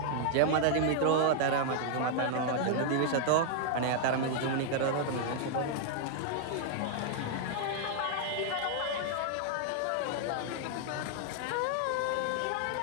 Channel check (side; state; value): both; different; correlation -0.01